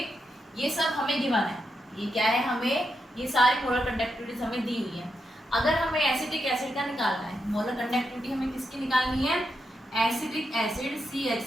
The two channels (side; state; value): both; normal; correlation 0.84